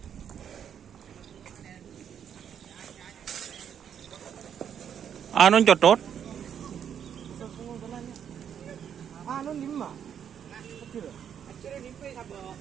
Anong cotot? Ano 5? Kecil.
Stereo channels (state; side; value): quieter; left; 8.5 dB